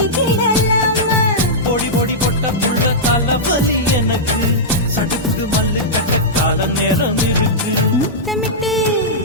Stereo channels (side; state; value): both; normal; correlation -0.11